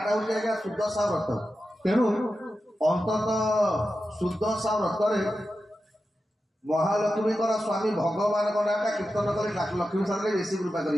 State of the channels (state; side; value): normal; both; correlation 0.91